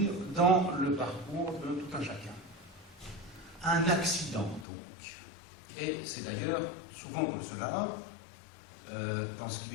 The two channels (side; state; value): right; drops out; at 4.7 s